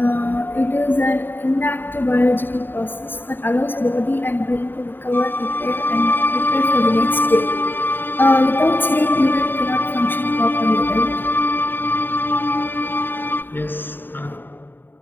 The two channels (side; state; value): right; late; 0.095 ms